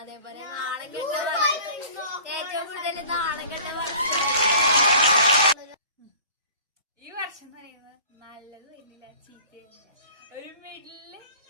നാണം കെട്ട ഏറ്റവും കൂടുതൽ നാണം കെട്ട ഈ വർഷം എന്ന് പറയുന്നത് നല്ലത് വരുന്നില്ല, ചീത്തയില്ല, ഒരു മിഡില്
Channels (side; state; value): both; inverted; correlation -0.45